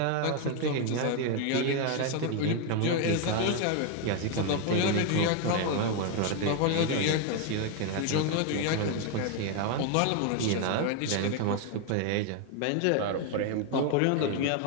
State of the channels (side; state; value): both; different; correlation 0.01